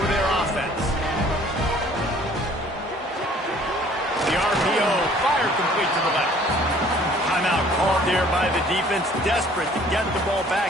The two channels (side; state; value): both; normal; correlation 0.55